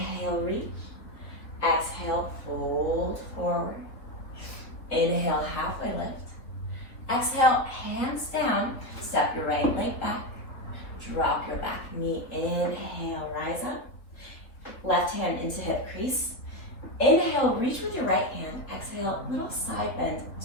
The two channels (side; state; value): right; late; 3.5 ms